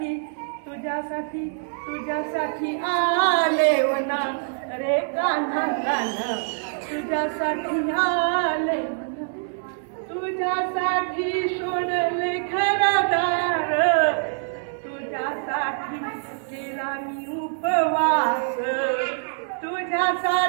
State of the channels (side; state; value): left; silent; digital silence